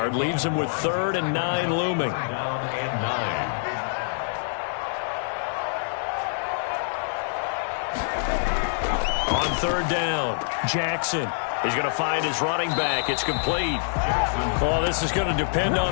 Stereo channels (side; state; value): right; silent; digital silence